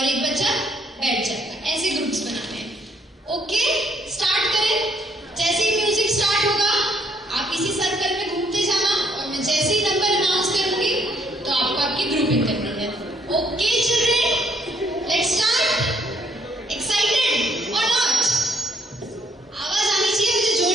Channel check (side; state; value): both; normal; correlation 0.69